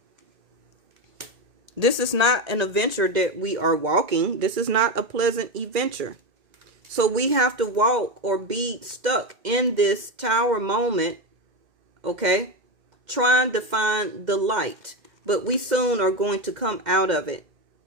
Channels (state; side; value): late; left; 2.1 ms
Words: This is not an adventure that we are walking. This is not a pleasant adventure. So we have to walk or be stuck in this tower moment, okay? Trying to find the light. But we soon are going to come out of it,